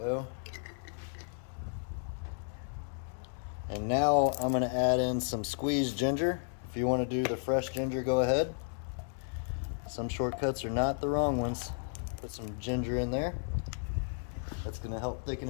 And now I'm going to add in some squeezed ginger. If you want to do the fresh ginger, go ahead. Some shortcuts are not the wrong ones. Put some ginger in there. That's going to help thicken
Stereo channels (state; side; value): silent; right; 55 dB below the other